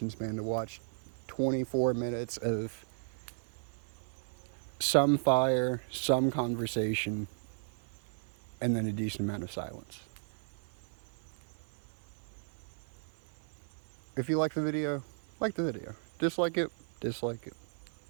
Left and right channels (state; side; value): silent; left; 54 dB below the other